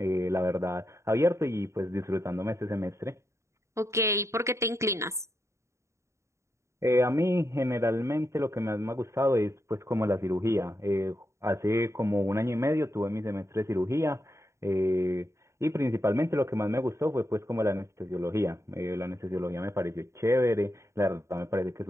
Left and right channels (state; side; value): late; left; 0.14 ms